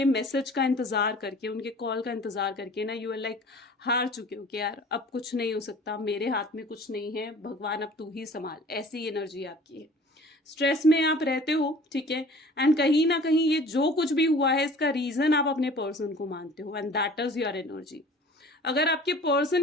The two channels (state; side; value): normal; both; correlation 0.47